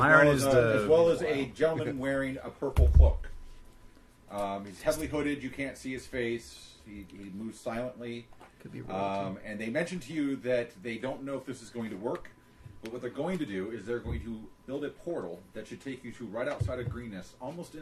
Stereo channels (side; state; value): both; identical; correlation 1.00